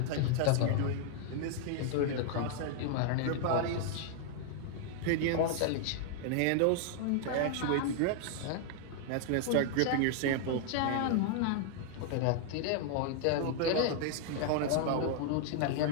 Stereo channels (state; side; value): different; both; correlation -0.01